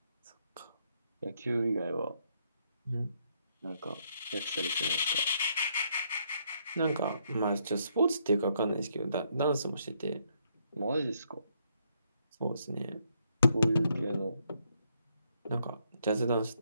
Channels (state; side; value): inverted; both; correlation -0.73